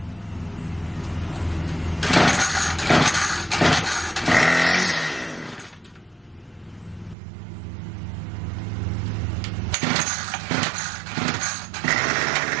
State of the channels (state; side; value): drops out; left; at 7.2 s